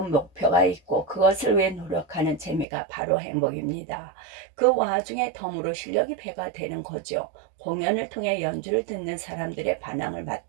목표가 있고 그것을 위해 노력하는 재미가 바로 행복입니다. 그 와중에 덤으로 실력이 배가 되는 거죠. 공연을 통해 연주를 듣는 사람들의 반응을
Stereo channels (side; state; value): left; drops out; at 2.7 s